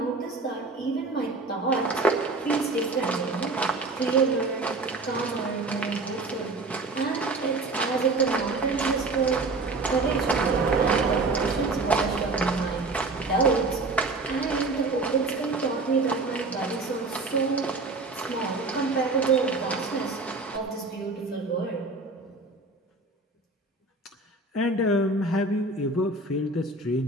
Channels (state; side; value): quieter; left; 3.4 dB